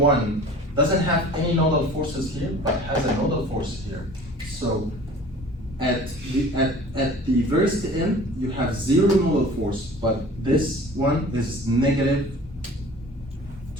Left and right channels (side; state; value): both; normal; correlation 0.45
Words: doesn't have any nodal forces here, but has a nodal force here. So at the first end, you have 0 nodal force, but this one is negative